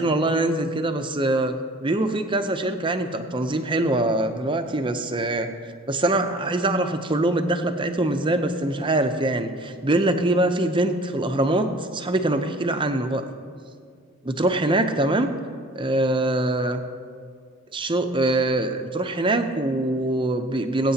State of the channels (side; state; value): both; normal; correlation 0.48